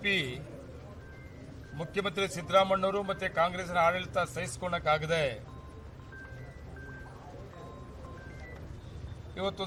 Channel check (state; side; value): identical; both; correlation 1.00